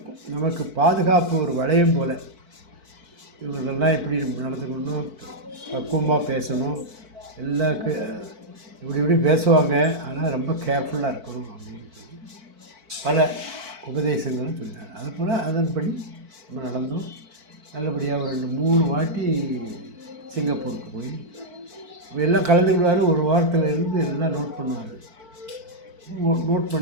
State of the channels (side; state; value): left; late; 4.5 ms